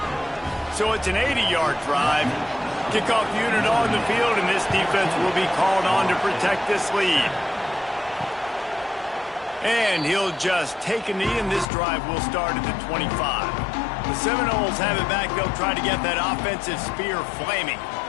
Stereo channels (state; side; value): drops out; right; at 11.7 s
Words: So it's an 80-yard drive. Kickoff unit on the field, and this defense will be called on to protect this lead. And he'll just take a knee, and this drive will start at the 25. The Seminoles have it back. They'll try to get that offensive spear flaming.